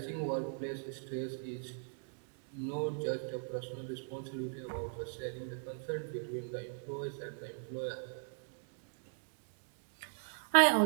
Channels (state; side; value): silent; left; digital silence